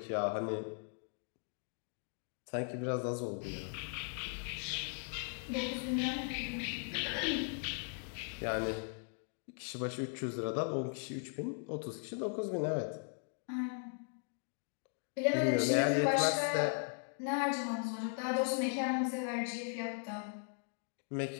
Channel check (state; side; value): silent; right; 52 dB below the other